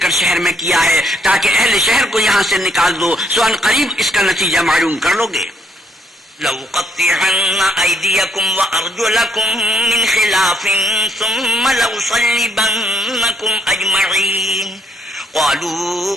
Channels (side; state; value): both; normal; correlation 0.71